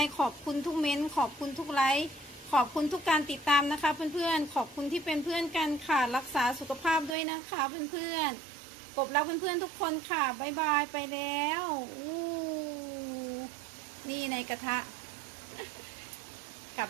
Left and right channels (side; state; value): left; drops out; at 7.2 s